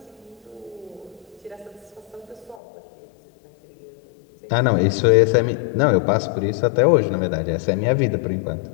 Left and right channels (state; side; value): drops out; right; at 2.6 s